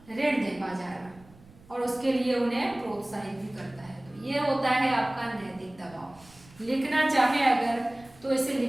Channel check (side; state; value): right; noise; rumble, 25 dB below the sound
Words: ऋण दे पा जाएगा और उसके लिए उन्हें प्रोत्साहित भी करता है। तो ये होता है आपका नैतिक दबाव। लिखना चाहे अगर तो इसे